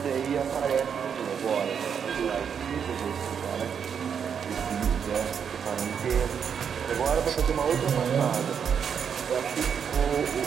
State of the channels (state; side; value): quieter; left; 7.4 dB